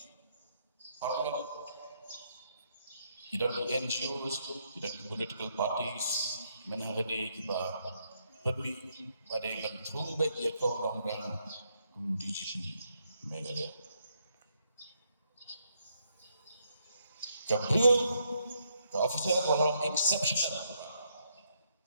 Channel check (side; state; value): both; inverted; correlation -0.75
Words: Parlo, tidak di NGOs, tidak di political parties, menghadapi kita pergi pada bentuk baik ya kau orang DGP Meghalaya. Kabel, officer orang exceptional,